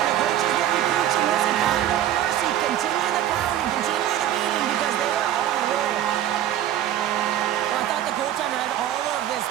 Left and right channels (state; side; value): quieter; left; 11.6 dB